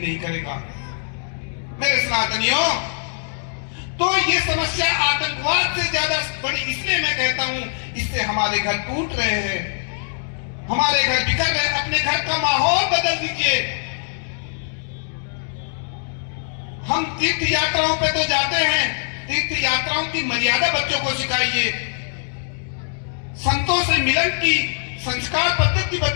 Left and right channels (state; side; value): silent; right; digital silence